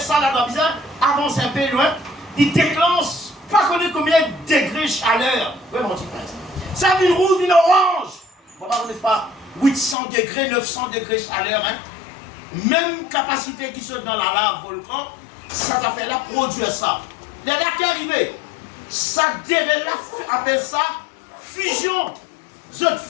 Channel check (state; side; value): drops out; right; at 10.0 s